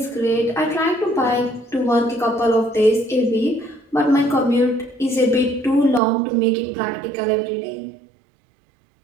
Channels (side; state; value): left; drops out; at 6.0 s